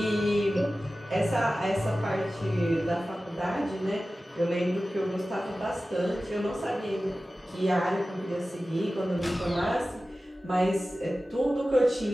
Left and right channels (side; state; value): both; normal; correlation 0.95